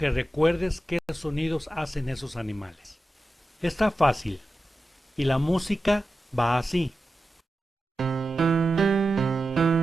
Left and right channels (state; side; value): normal; both; correlation 0.92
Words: recuerdes qué sonidos hacen esos animales. Está fácil. Y la música va así.